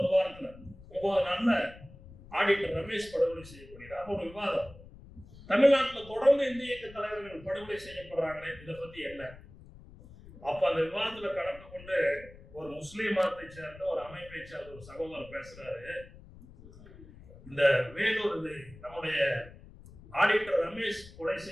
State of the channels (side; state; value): left; noise; rumble, 19 dB below the sound